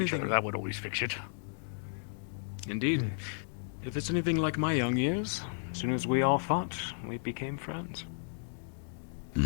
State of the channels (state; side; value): silent; right; digital silence